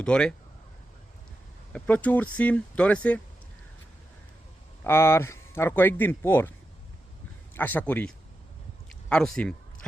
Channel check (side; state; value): both; normal; correlation 0.89